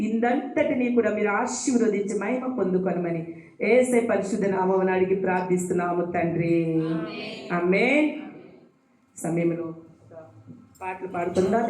ఇందంతటిని కూడా మీరు ఆశీర్వదించి మహిమ పొందుకొనమని యేసే పరిశుద్ధ నామమున అడిగి ప్రార్థిస్తున్నాము తండ్రి, ఆమేన్. సమయంలో పాటలు పాడుతుందా?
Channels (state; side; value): identical; both; correlation 1.00